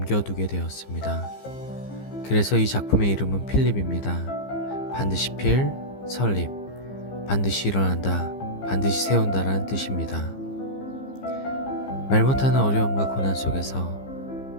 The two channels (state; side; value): late; right; 15 ms